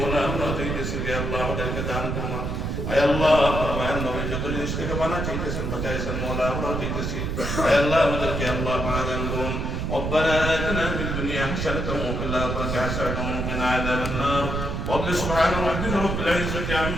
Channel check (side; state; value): right; noise; rumble, 2 dB below the sound